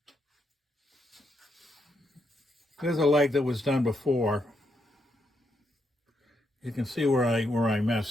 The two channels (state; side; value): normal; both; correlation 0.79